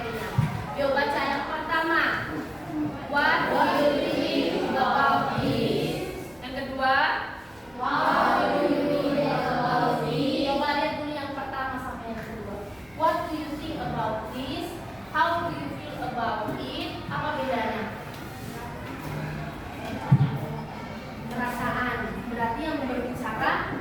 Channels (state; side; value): noise; right; rumble, 28 dB below the sound